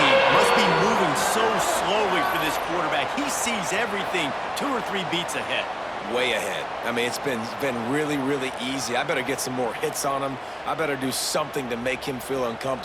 must be moving so slowly for this quarterback. He sees everything 2 or 3 beats ahead. Way ahead. I mean, it's been really, really easy. I better get some more hits on him. I better do something to make him feel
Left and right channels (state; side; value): identical; both; correlation 1.00